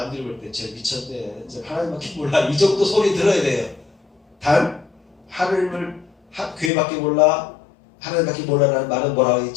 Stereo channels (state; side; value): drops out; right; at 6.7 s